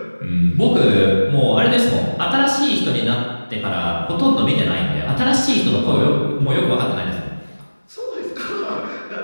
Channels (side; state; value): both; inverted; correlation -1.00